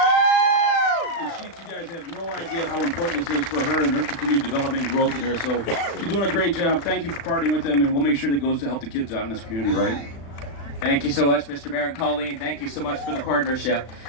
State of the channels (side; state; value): right; late; 36 ms